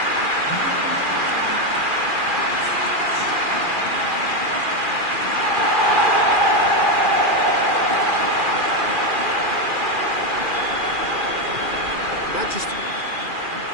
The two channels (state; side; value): late; left; 2.4 ms